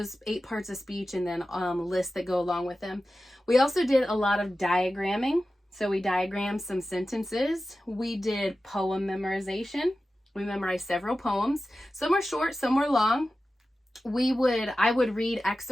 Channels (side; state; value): both; normal; correlation 0.94